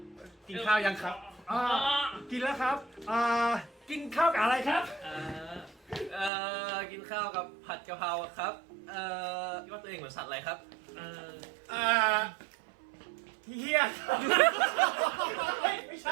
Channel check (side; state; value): left; drops out; at 6.3 s